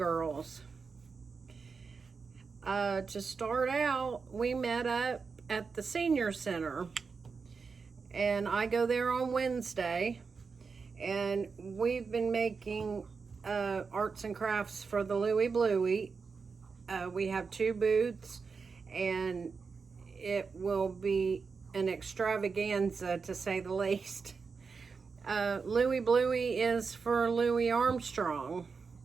To start out, we met up at the senior center, and I go there on Wednesday, and we've been making arts and crafts for the Louie Bluey. We have 2 booths, and it will be an extravaganza to say the least. Louie Bluey is for Louis Armstrong.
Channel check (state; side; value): quieter; left; 5.1 dB